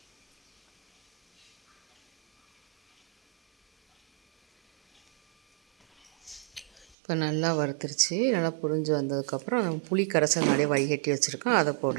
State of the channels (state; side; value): drops out; left; at 7.0 s